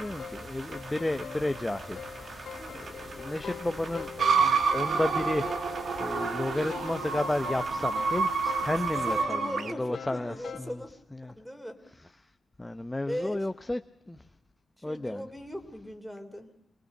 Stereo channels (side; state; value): both; normal; correlation 0.85